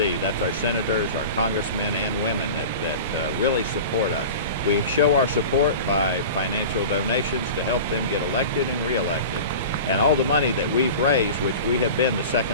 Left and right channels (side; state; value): both; inverted; correlation -0.34